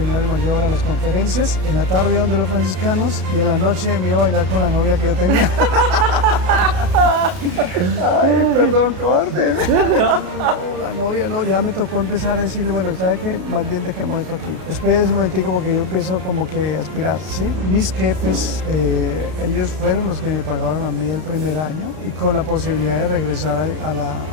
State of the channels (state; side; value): late; left; 32 ms